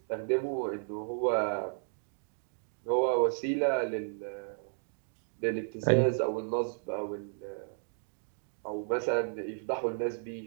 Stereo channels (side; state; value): left; silent; digital silence